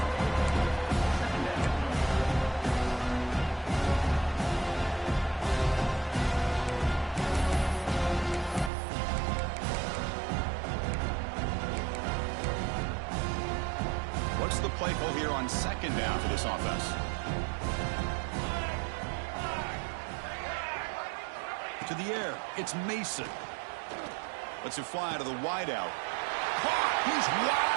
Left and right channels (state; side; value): drops out; left; at 8.7 s